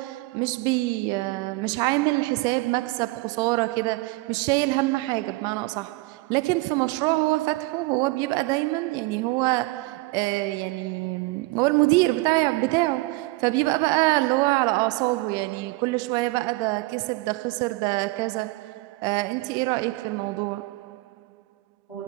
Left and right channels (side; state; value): left; quieter; 21.7 dB